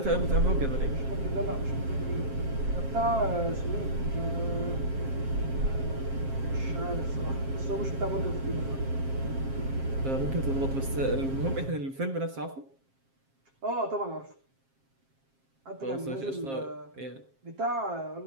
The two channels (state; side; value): late; left; 7.5 ms